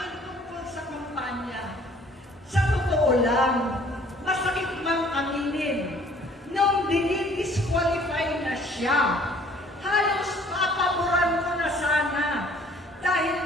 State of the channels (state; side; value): normal; both; correlation 0.56